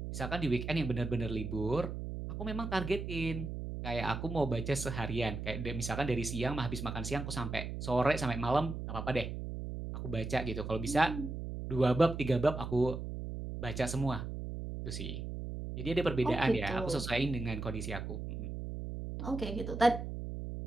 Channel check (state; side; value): noise; right; hum, 6 dB below the sound